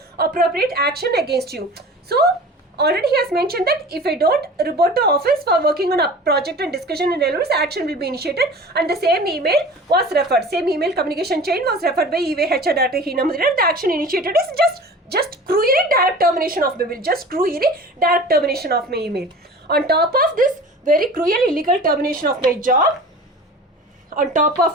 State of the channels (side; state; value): both; normal; correlation 0.40